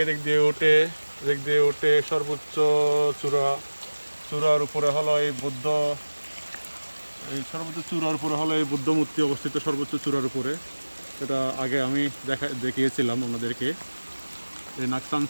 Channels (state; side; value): inverted; both; correlation -1.00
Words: এদিক দিয়ে উঠে সর্বোচ্চ চূড়ার উপরে হলো এই সর্বোচ্চ চূড়ার উপরে হলো এই বুদ্ধ মূর্তি অবস্থিত, সর্বোচ্চ চূড়ার উপরে। এটা আগে আমি দেখিয়েছিলাম আপনাদেরকে। এই